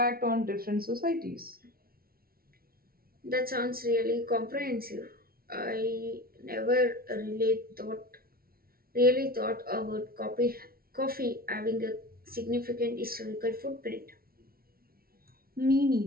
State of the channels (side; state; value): left; late; 0.43 ms